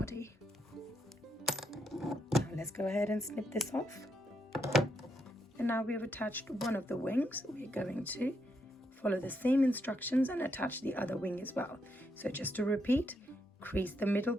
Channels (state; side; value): normal; both; correlation 0.79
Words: Now let's go ahead and snip this off. And now we have attached one of the wings. We're going to follow the same instructions and attach the other wing as well. So just to repeat, crease the middle